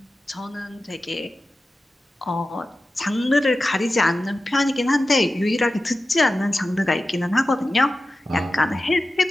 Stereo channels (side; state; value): both; normal; correlation 0.94